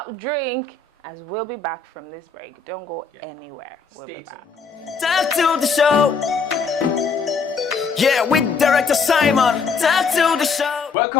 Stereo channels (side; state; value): right; quieter; 5.0 dB